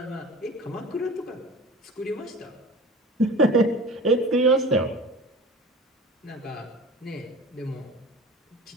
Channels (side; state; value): both; normal; correlation 0.38